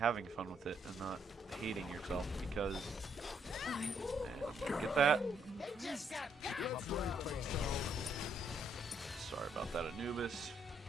fun with it and not hating yourself because... Get that? Sorry about that, Anubis.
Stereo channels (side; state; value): both; normal; correlation 0.72